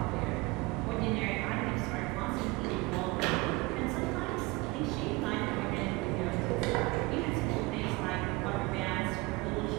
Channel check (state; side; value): quieter; left; 23.7 dB